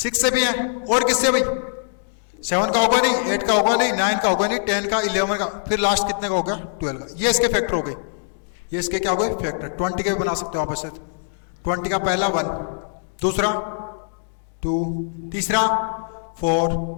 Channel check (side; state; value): right; silent; digital silence